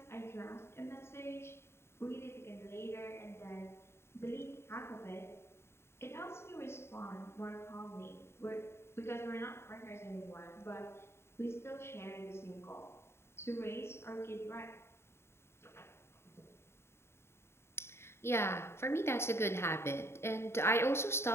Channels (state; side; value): late; right; 0.12 ms